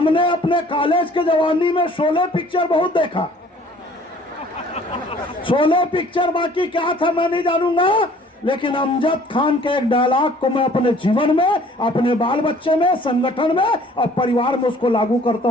अपने कॉलेज के जवानी में शोले पिक्चर बहुत देखा। शोले पिक्चर बाकी क्या था मैं नहीं जानूंगा, लेकिन अमजद खान के एक डायलॉग को मैं अपने जीवन में, अपने बाल बच्चे में, संगठन में और परिवार में उसको लागू करता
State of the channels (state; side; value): normal; both; correlation 0.54